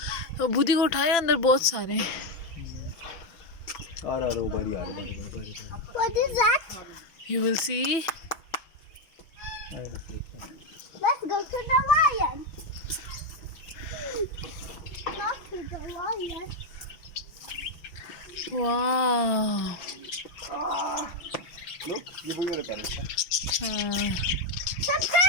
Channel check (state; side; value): late; right; 5.9 ms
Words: तो बुद्धि को उठाया अंदर बहुत सारे buddy. What is that? you will see Let's go to the lion. Not to the lion. wow Look, ये वही वाला parrot है. The